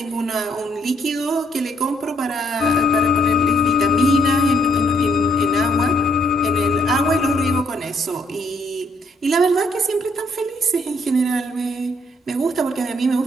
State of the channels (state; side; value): normal; both; correlation 0.69